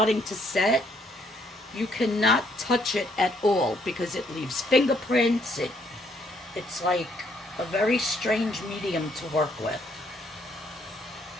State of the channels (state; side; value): normal; both; correlation 0.69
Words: to set, you cannot touch it at all because it leaves fingerprints. It's like a very strange medium to work with.